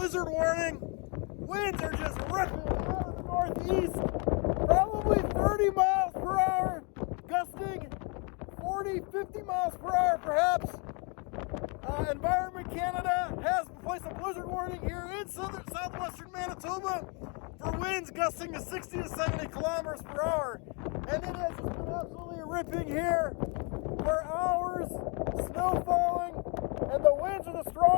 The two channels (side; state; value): right; quieter; 33.7 dB